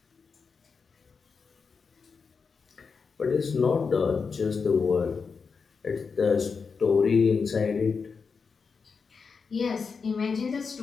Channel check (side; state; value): right; quieter; 5.3 dB